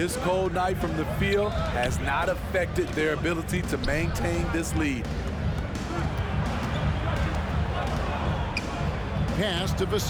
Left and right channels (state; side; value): identical; both; correlation 1.00